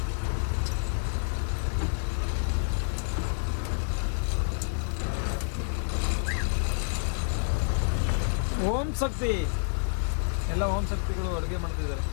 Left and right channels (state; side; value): silent; right; 59 dB below the other